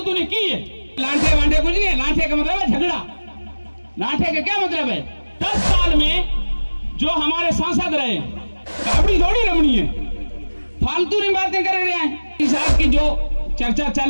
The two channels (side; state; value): both; inverted; correlation -1.00